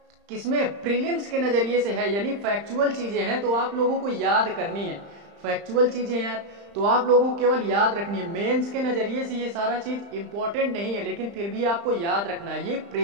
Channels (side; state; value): left; late; 35 ms